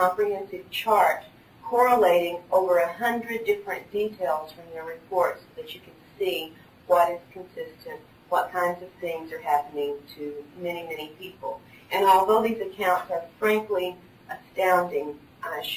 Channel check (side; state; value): both; identical; correlation 1.00